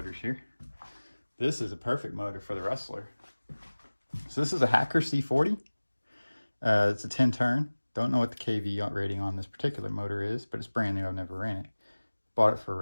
here. This is a perfect motor for the Rustler. So this is a Hacker C40. It's a 10 turn. Don't know what the KV rating on this particular motor is, but it's brand new. I've never ran it. Bought it for a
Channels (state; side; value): inverted; both; correlation -1.00